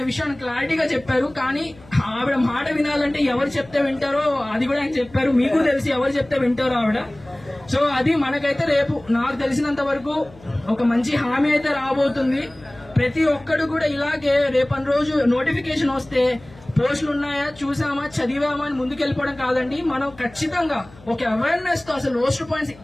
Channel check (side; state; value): left; noise; hum, 23 dB below the sound